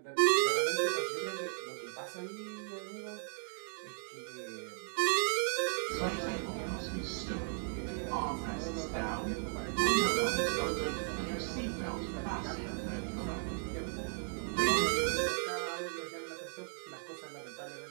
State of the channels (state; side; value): silent; left; 54 dB below the other